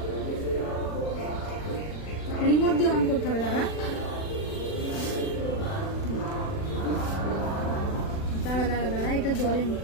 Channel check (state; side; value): late; right; 40 ms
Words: রিমোট দিয়ে অন করতে হবে। দাঁড়া এটা জ্বলেনি,